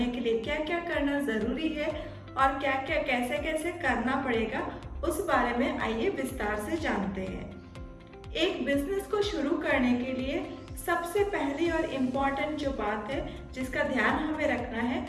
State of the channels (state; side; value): identical; both; correlation 1.00